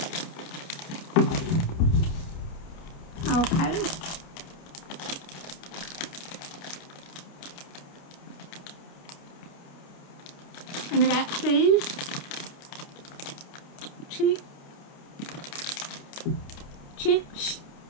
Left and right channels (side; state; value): right; late; 29 ms